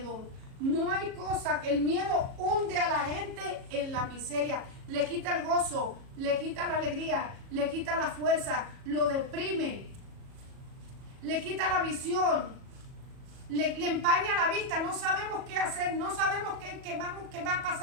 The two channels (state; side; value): late; left; 37 ms